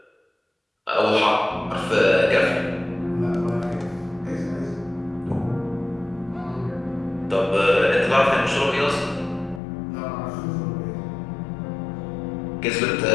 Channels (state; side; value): drops out; right; at 9.6 s